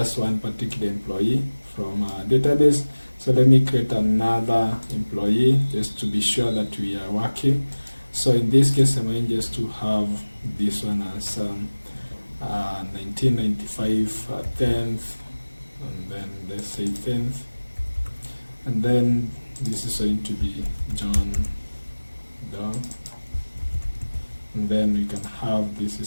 one particular employee from our database. So let me create another employee just to be sure that we are working. So in this case, I'm going just to have this one as 1995 10th, and then let's say 10th, and then this is going to be John Doe, and then we can have this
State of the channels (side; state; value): both; inverted; correlation -1.00